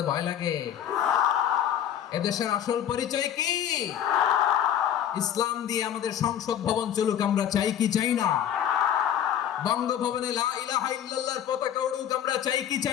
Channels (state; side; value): quieter; right; 10.1 dB